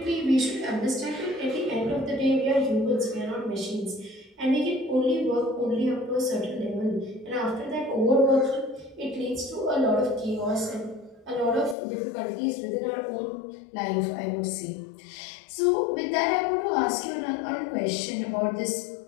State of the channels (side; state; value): right; drops out; at 11.8 s